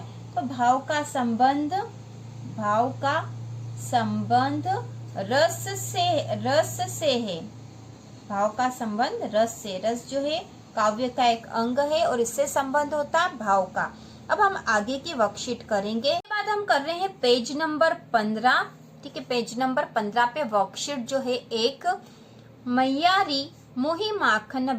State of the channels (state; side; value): identical; both; correlation 1.00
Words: तो भाव का संबंध रस से है। भाव का संबंध रस से, रस जो है काव्य का एक अंग है और इससे संबंध होता है भाव का। अब हम आगे की वर्कशीट करेंगे। इसके बाद हम कर रहे हैं पेज नंबर 15, ठीक है। पेज नंबर 15 पे वर्कशीट जो है एक, मैयारी मोही माखन